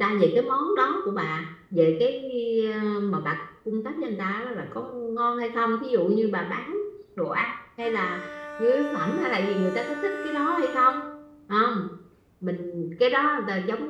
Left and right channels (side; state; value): both; identical; correlation 1.00